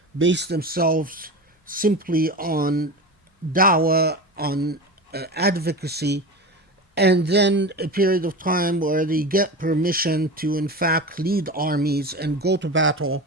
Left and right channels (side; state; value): both; normal; correlation 0.27